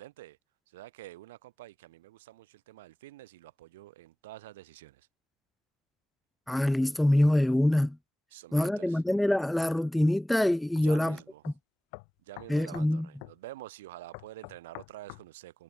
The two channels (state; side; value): normal; both; correlation 0.98